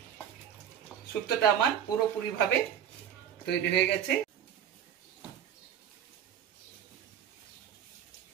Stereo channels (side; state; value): left; quieter; 9.5 dB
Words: শুক্তোটা আমার পুরোপুরি ভাবে তৈরি হয়ে গেছে।